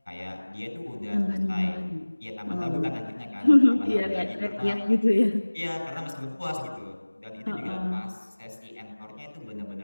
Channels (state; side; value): inverted; both; correlation -1.00